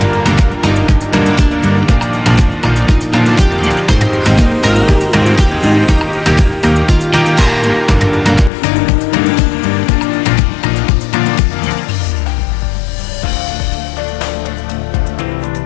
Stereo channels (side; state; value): right; drops out; at 8.5 s